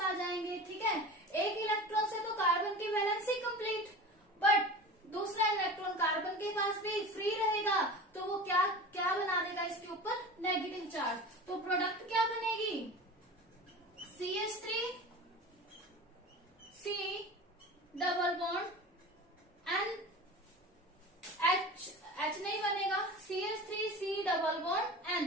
जाएंगे। ठीक है, एक इलेक्ट्रॉन से तो कार्बन की वैलेंसी कंप्लीट, बट दूसरा इलेक्ट्रॉन कार्बन के पास भी फ्री रहेगा, तो वो क्या क्या बना देगा इसके ऊपर, नेगेटिव चार्ज। तो प्रोडक्ट क्या बनेगी, CH3 C double bond N, H नहीं बनेगा, CH3 C double bond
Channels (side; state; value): both; normal; correlation 0.34